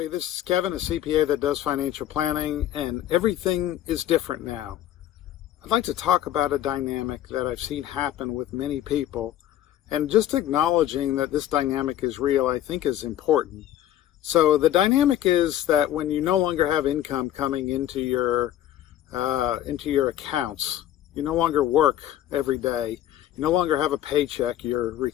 this is Kevin, a CPA that does financial planning, and everything is different now. I'd like to talk about a dynamic that I've seen happen with many people, and just acknowledging that this dynamic is real, I think is important. So the dynamic is that when you no longer have income coming into your accounts, you no longer work every day, you no longer have a paycheck, you're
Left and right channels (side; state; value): right; quieter; 12.4 dB